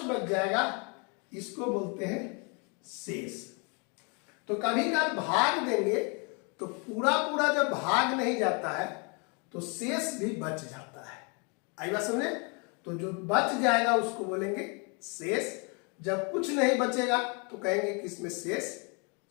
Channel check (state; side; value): quieter; right; 33.8 dB